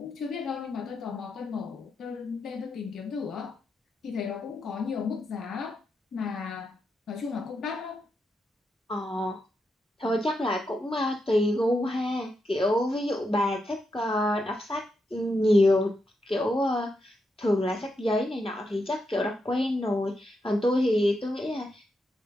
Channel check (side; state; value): both; normal; correlation 0.84